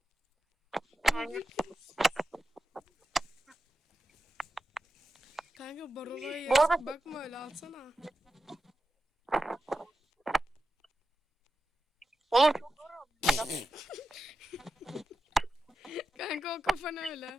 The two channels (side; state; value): both; normal; correlation 0.90